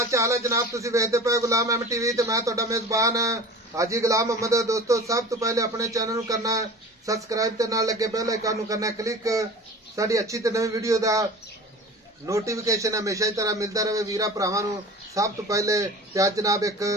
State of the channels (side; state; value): both; normal; correlation 0.38